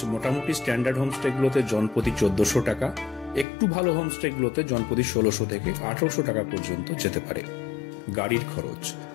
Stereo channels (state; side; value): drops out; right; at 3.5 s